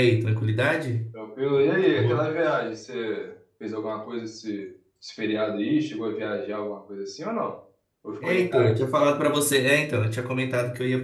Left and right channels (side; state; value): both; identical; correlation 1.00